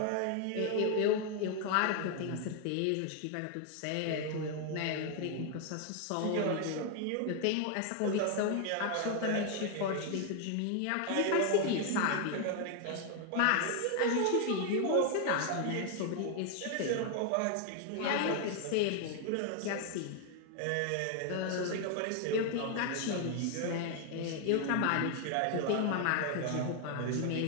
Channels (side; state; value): both; different; correlation 0.00